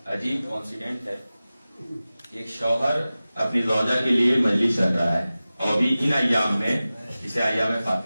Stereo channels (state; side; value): inverted; both; correlation -0.96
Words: عجیب کانسیڈنٹ ہے. ایک شوہر اپنی زوجہ کے لیے مجلس رکھ رہا ہے اور بھی ان ایام میں، اسے ایام